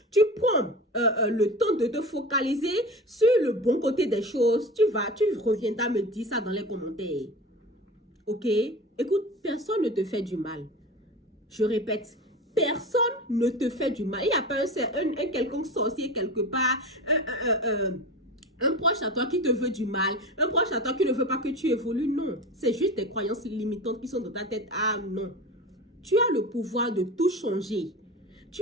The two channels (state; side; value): normal; both; correlation 0.31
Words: tu prends le temps de te focaliser sur le bon côté des choses. Tu reviendras me dire ça dans les commentaires. OK? Écoute, personne ne te fait du mal. Je répète, personne ne te fait du mal. Il n'y a pas un quelconque sorcier quelque part, un proche à toi qui te veut du mal, un proche à toi qui ne veut pas que tu évolues. Non, c'est juste des croyances limitantes qui sont dans ta tête. Ah non, tu as le pouvoir de tout changer.